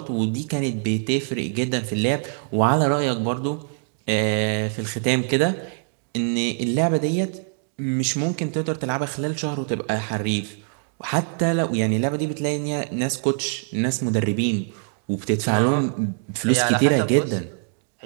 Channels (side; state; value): left; silent; 56 dB below the other